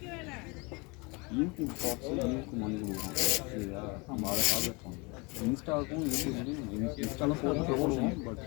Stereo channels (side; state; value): right; quieter; 28.3 dB